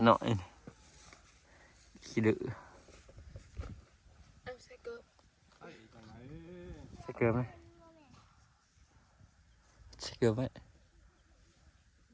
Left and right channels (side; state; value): both; identical; correlation 1.00